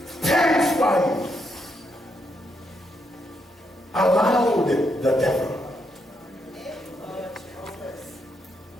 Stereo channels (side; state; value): both; normal; correlation 0.79